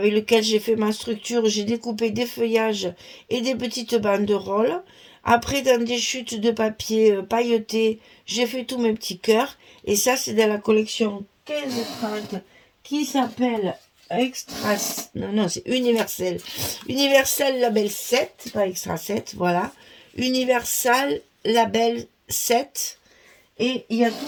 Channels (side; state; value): both; identical; correlation 1.00